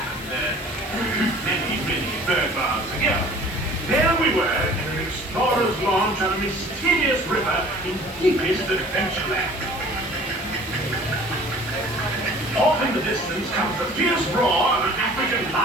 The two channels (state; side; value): normal; both; correlation 0.48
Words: Many bird baths ago. There we were in an explorer's launch on a mysterious river in deepest adventureland. Off in the distance comes the fierce roar of an African